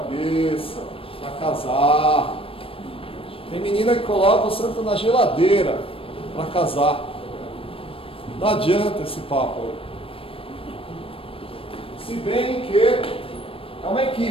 para casar. Tem menina que coloca o santo na geladeira para casar. Não adianta esse papo aí. Se bem que é uma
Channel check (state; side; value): late; right; 0.27 ms